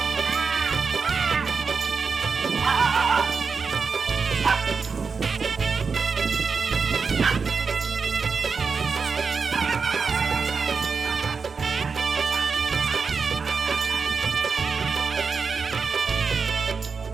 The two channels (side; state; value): left; quieter; 5.2 dB